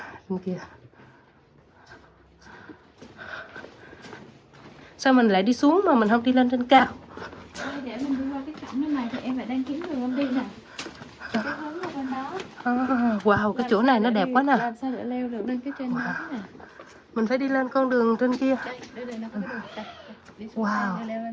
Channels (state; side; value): identical; both; correlation 1.00